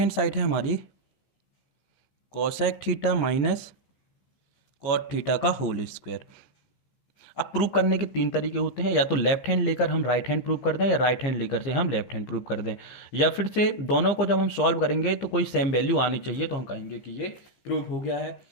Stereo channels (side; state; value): right; late; 15 ms